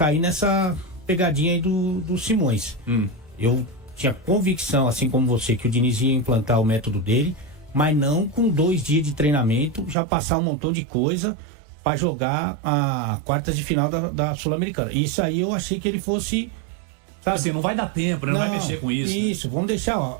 nessa pegadinha aí do Simões. Eu tinha convicção, assim como você, que o Diniz ia implantar o método dele, mas não com 2 dias de treinamento, já passar um montão de coisa para jogar a quartas de final da Sul-Americana. Isso aí eu achei que ele fosse... Sabe? Assim, não vai dar tempo, né? Não vai mexer com isso. Isso, vamos deixar,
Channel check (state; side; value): drops out; left; at 10.0 s